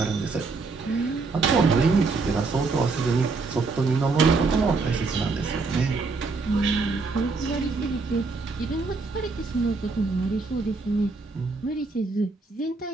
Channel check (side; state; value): left; quieter; 4.1 dB